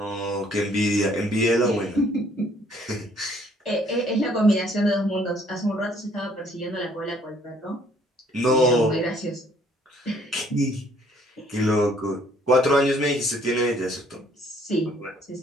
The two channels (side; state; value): both; normal; correlation 0.62